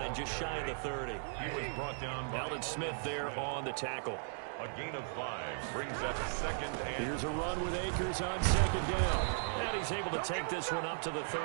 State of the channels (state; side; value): silent; left; digital silence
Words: just shy of the 30. He was brought down by Alden Smith there on the tackle. A gain of 5 brings up 2nd and... Here's a run with Akers on 2nd down. And he's able to take this one up to the